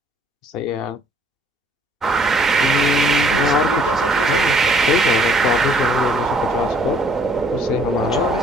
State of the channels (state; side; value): normal; both; correlation 0.61